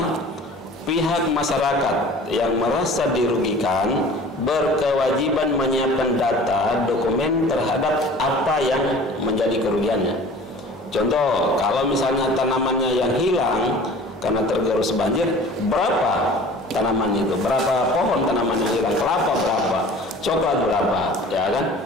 pihak masyarakat yang merasa dirugikan berkewajiban menyiapkan data dokumen terhadap apa yang menjadi kerugiannya. Contoh, kalau misalnya tanamannya yang hilang karena tergerus banjir, berapa tanaman itu? Berapa pohon tanaman yang hilang? Kelapa berapa? Coklat berapa? Ya kan?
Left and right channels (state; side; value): normal; both; correlation 0.44